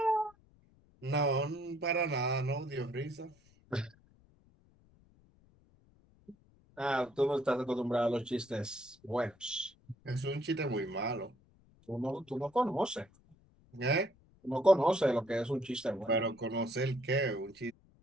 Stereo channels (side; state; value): left; noise; rumble, 30 dB below the sound